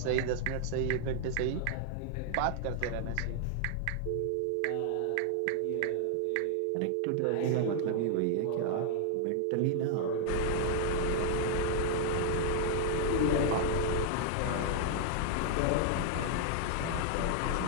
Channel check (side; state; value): both; different; correlation 0.00